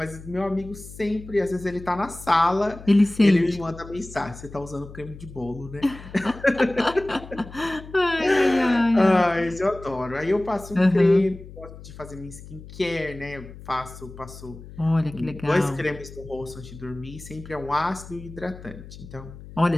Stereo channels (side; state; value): left; noise; hum, 16 dB below the sound